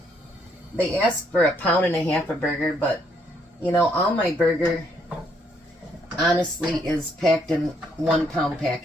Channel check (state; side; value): normal; both; correlation 0.71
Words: they asked for 1.5 pounds of burger, but you know, all my burger honestly is packed in 1 pound